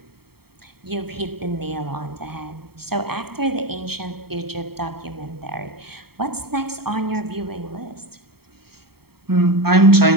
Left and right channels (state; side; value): late; left; 0.95 ms